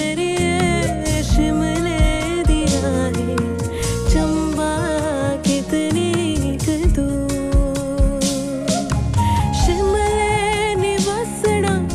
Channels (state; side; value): identical; both; correlation 1.00